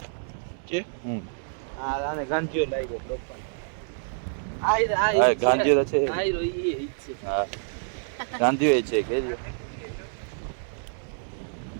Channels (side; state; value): left; silent; digital silence